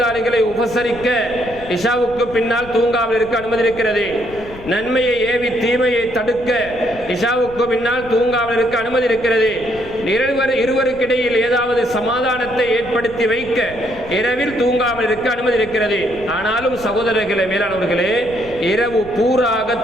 உபசரிக்க இஷாவுக்கு பின்னால் தூங்காமல் இருக்க அனுமதி இருக்கிறது. நன்மையை ஏவி தீமையை தடுக்க இஷாவுக்கு பின்னால் தூங்காமல் இருக்க அனுமதி இருக்கிறது. இருவருக்கிடையில் ஏதாவது சமாதானத்தை ஏற்படுத்தி வைக்க இரவில் தூங்காமல் இருக்க அனுமதி இருக்கிறது. ஆனாலும் சகோதரர்களே, மேலானவர்களே, இரவு பூராக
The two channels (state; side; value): noise; left; rumble, 17 dB below the sound